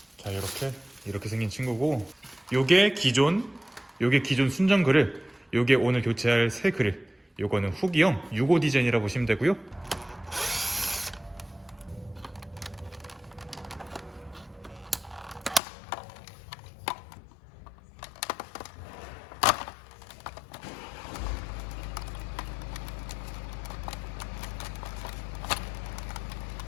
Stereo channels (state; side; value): drops out; right; at 15.6 s